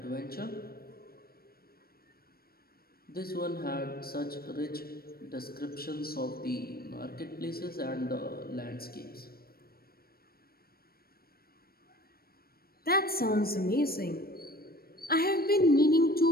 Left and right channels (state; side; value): late; right; 0.44 ms